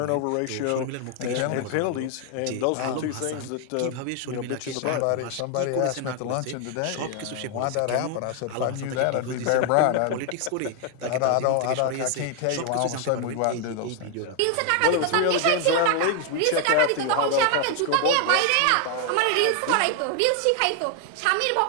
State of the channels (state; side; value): different; both; correlation 0.00